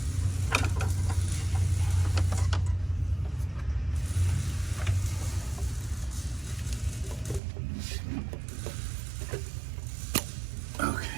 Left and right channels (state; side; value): drops out; left; at 7.4 s